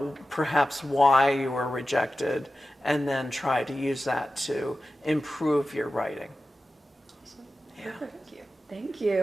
perhaps why you were rejected, and then try to use that to improve your writing. Awesome. Yeah. Thank you. Thank you.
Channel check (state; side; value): normal; both; correlation 0.93